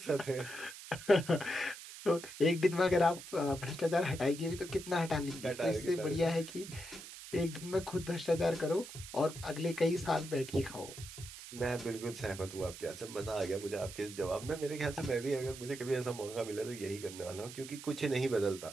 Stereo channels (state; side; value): noise; right; hiss, 13 dB below the sound